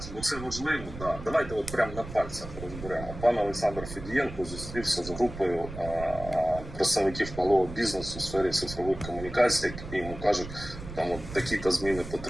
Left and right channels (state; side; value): noise; right; rumble, 11 dB below the sound